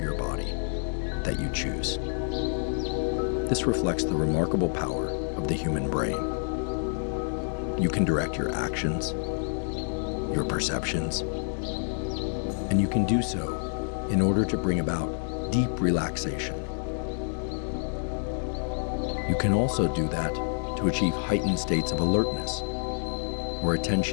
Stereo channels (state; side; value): silent; right; digital silence